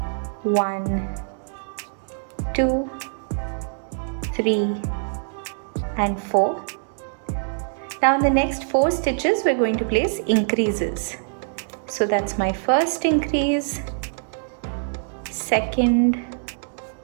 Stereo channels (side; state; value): left; silent; digital silence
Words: 1 2 3 and 4. Now in the next 4 stitches we're going to place increases. So that's my first increase, second,